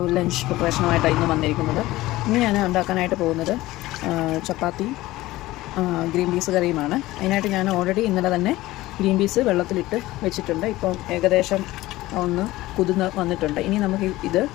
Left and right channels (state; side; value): quieter; right; 17.7 dB